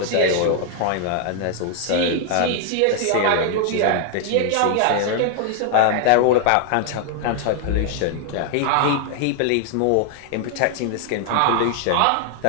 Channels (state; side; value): different; both; correlation 0.00